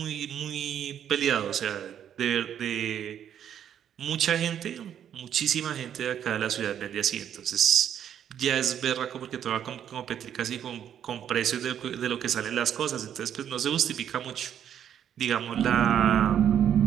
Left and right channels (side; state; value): left; quieter; 9.5 dB